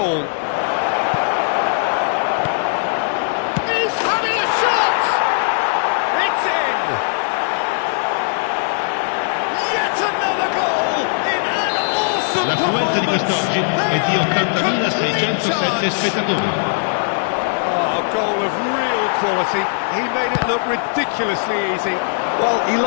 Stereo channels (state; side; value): silent; right; 67 dB below the other